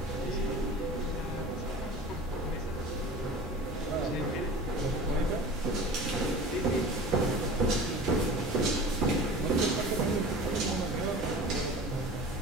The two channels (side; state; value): both; normal; correlation 0.38